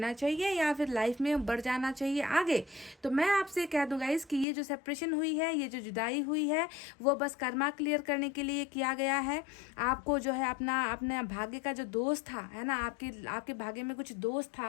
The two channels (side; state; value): right; drops out; at 4.5 s